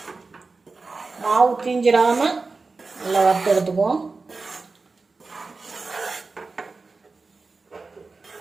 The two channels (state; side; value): quieter; left; 4.0 dB